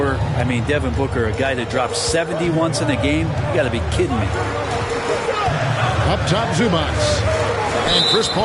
I mean, Devin Booker, a guy that drops 70 once in a game. You got to be kidding me. Up top, Zubac. And Chris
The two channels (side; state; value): both; identical; correlation 1.00